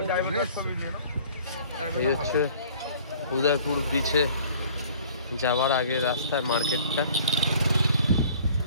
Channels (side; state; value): both; inverted; correlation -0.52